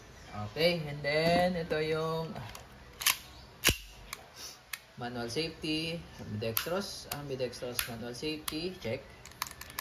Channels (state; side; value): identical; both; correlation 1.00